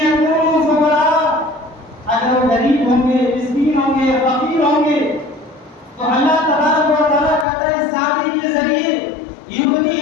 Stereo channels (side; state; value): right; drops out; at 7.5 s